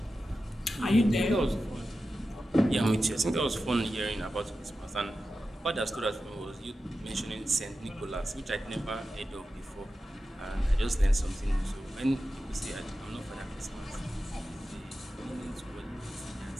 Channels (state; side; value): normal; both; correlation 0.92